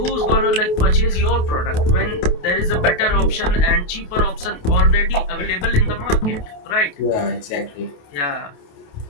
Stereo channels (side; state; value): right; late; 28 ms